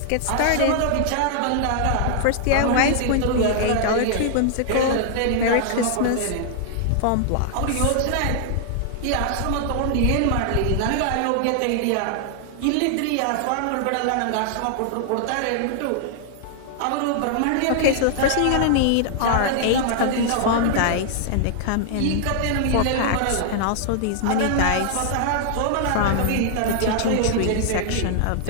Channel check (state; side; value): different; both; correlation -0.01